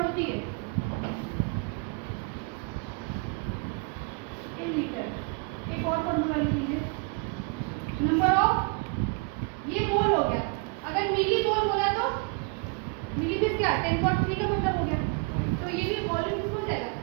होती है। 1 लीटर, एक और फॉर्मूला लिख लीजिए, नंबर ऑफ, ये मोल हो गया, अगर मिली मोल बोला तो मिली मीन्स क्या? 10.3 का मतलब हो गया, तो ये भी वॉल्यूम किसमें हो जाएगा?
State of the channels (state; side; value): quieter; left; 31.9 dB